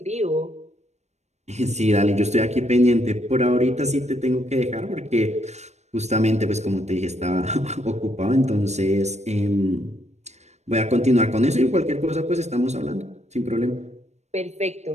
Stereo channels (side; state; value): left; late; 0.32 ms